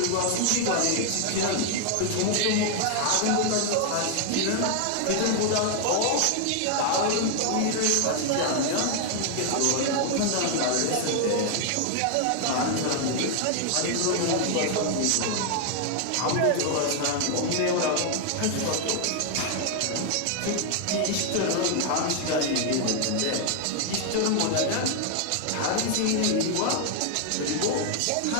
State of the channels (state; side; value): different; both; correlation 0.00